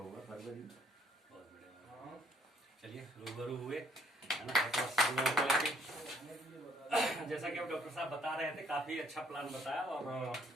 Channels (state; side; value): normal; both; correlation 0.63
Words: फरवरी। बहुत बढ़िया। चलिए, रूबरू हुए है ना। सब लोगों को लेके जैसा कि अब डॉक्टर साहब बता रहे थे, काफी अच्छा प्लान बताया और